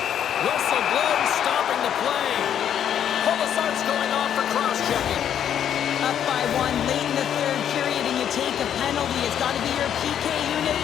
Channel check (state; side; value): quieter; right; 9.5 dB